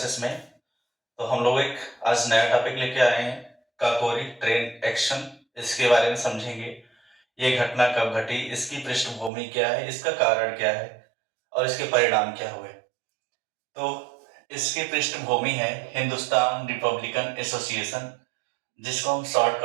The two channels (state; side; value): drops out; left; at 9.3 s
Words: में। तो हम लोग एक आज नया टॉपिक लेके आए हैं, काकोरी ट्रेन एक्शन। इसके बारे में समझेंगे। ये घटना कब घटी, इसकी पृष्ठभूमि क्या है, इसका कारण क्या है और इसके परिणाम क्या हुए। तो इसकी पृष्ठभूमि है हिंदुस्तान रिपब्लिकन एसोसिएशन, जिसको हम